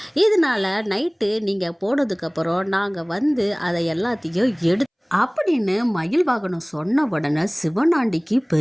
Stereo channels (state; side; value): identical; both; correlation 1.00